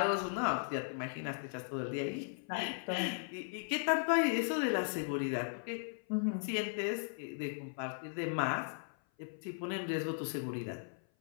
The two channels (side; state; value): right; silent; 53 dB below the other